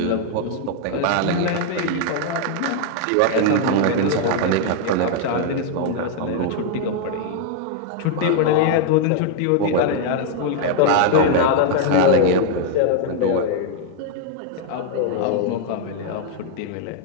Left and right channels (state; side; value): different; both; correlation 0.00